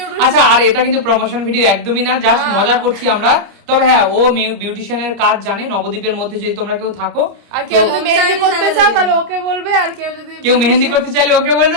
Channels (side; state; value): left; late; 30 ms